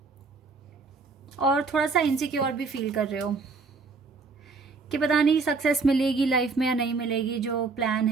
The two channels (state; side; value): quieter; left; 4.3 dB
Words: और थोड़ा सा इनसिक्योर भी फील कर रहे हो कि पता नहीं सक्सेस मिलेगी लाइफ में या नहीं मिलेगी, जो प्लान